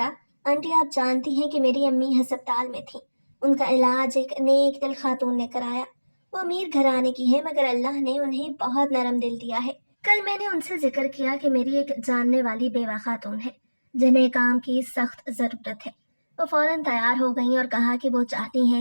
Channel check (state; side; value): inverted; both; correlation -1.00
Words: आंटी, आप जानती हैं कि मेरी अम्मी हस्पताल में थी। उनका इलाज एक नेक दिल खातून ने कराया। वो अमीर घराने की है, मगर अल्लाह ने उन्हें बहुत नरम दिल दिया है। कल मैंने उनसे जिक्र किया कि मेरी एक जानने वाली बेवा खातून है जिन्हें काम की सख्त जरूरत है। वो फौरन तैयार हो गई और कहा कि वो चाहती